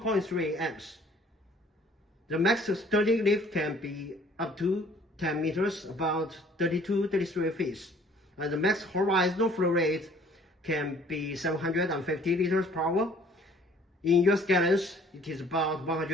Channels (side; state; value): both; normal; correlation 0.56